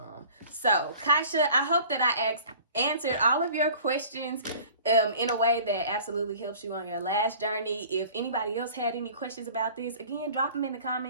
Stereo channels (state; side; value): inverted; both; correlation -0.46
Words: So Kasha, I hope that I answered all of your questions in a way that absolutely helps you on your lash journey. If anybody else had any questions about this, again, drop them in the